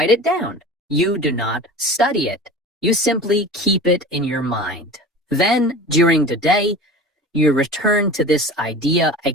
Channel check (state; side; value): normal; both; correlation 0.36